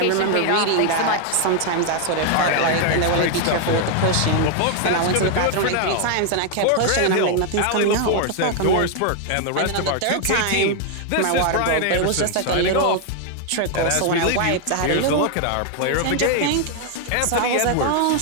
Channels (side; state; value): both; different; correlation 0.00